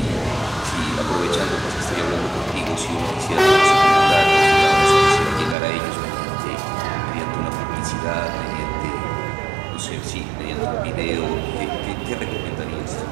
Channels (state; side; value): drops out; left; at 5.6 s